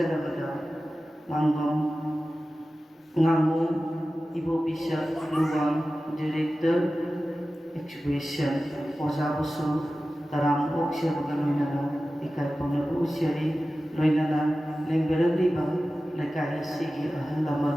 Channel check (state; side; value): normal; both; correlation 0.95